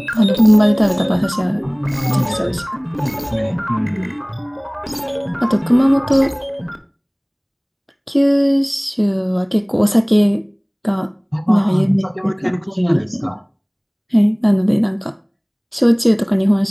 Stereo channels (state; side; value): identical; both; correlation 1.00